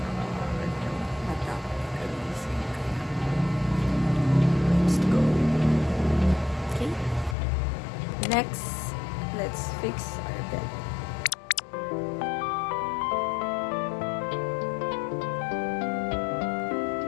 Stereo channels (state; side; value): drops out; right; at 7.4 s